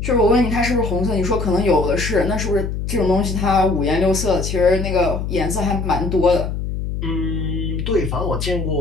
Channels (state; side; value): noise; left; hum, 4 dB below the sound